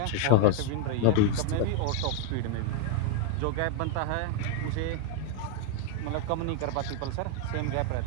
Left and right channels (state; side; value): different; both; correlation 0.00